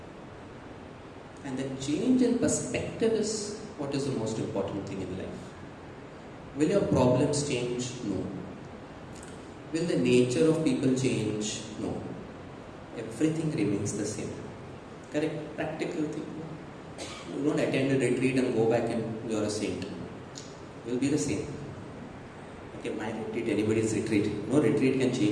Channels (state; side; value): identical; both; correlation 1.00